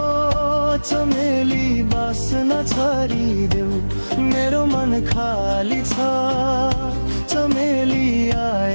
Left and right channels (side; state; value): both; inverted; correlation -1.00